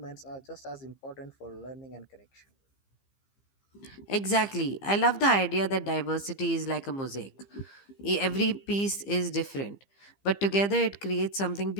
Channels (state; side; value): late; right; 15 ms